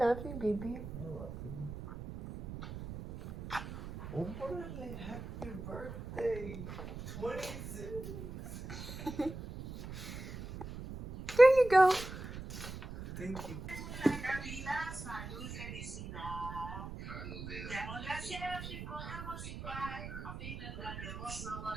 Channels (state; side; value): noise; right; rumble, 9 dB below the sound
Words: you, baby. Órale, happy birthday. 26. There you go. Thank you.